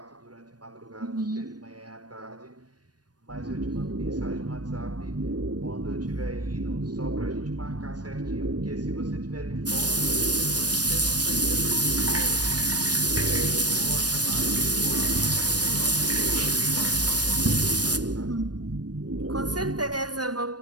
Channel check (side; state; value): left; late; 0.69 ms